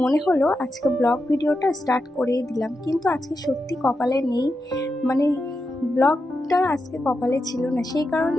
মনে হলো আজকে ব্লগ ভিডিওটা স্টার্ট করেই দিলাম। কিন্তু আজকে সত্যি কপালে নেই, মানে ব্লগটা আজকে কপালে ছিল না, সেই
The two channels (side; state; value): both; normal; correlation 0.88